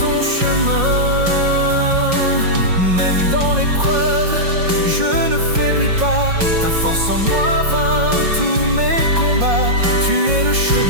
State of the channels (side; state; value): left; late; 5.6 ms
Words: chemin. Même dans l'épreuve, je ne faiblis pas. Ta force en moi vainc tous mes combats. Tu es le